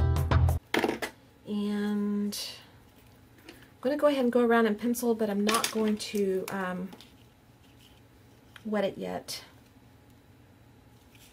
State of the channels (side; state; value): both; identical; correlation 1.00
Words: I'm going to go ahead and go around and pencil, but I'm not going to wet it yet.